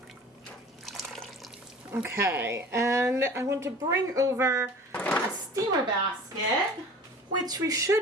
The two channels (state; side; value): normal; both; correlation 0.42